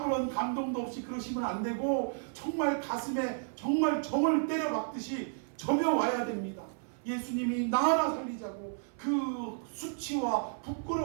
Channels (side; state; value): left; silent; 55 dB below the other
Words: 감동도 없이 그러시면 안 되고 정말 가슴에 정말 정을 때려 박듯이 점여와야 됩니다. 예수님이 나 하나 살리자고 그 수치와